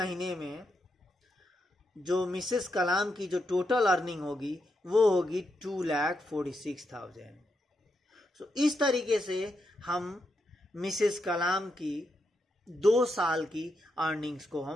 में जो मिसेस कलाम की जो टोटल अर्निंग होगी वो होगी 2,46,000। सो इस तरीके से हम मिसेस कलाम की 2 साल की अर्निंग्स को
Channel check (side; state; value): both; normal; correlation 0.83